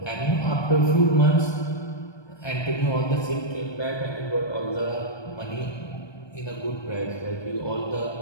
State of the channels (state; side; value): late; right; 1.2 ms